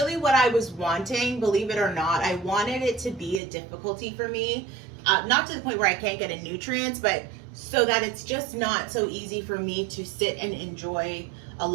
what I was wanting, believe it or not. I wanted it to be a difficulty for me, not to the point where I can't get nutrients, but so that it's just not so easy for me to sit and enjoy a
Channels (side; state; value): left; drops out; at 3.4 s